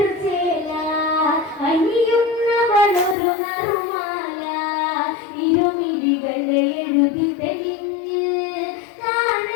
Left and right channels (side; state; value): right; drops out; at 3.2 s